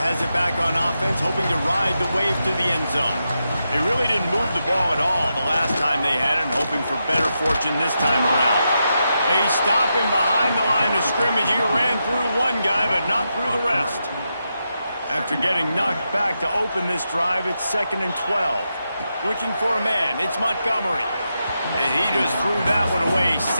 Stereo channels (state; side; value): inverted; both; correlation -0.86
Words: has it back on offense, hoping to ride the wave to the end zone. They really didn't move the ball at all the last time they had it, and hoping for better fortune this time around. They stop him behind the line of scrimmage. He ran through one guy, but not through the rest. After getting knocked back to open this drive, it's 2nd and 12. Looking for a man, it's Montgomery. And he just threw that one away.